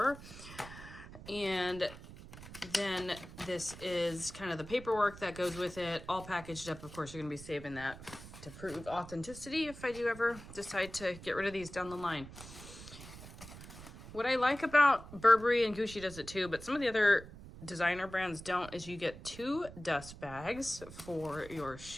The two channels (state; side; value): noise; right; rumble, 15 dB below the sound